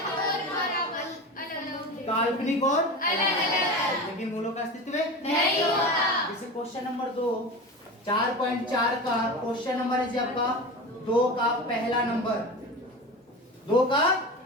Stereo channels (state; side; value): normal; both; correlation 0.29